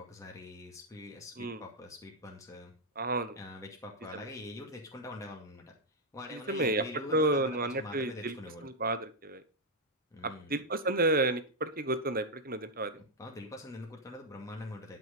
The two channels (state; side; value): normal; both; correlation -0.01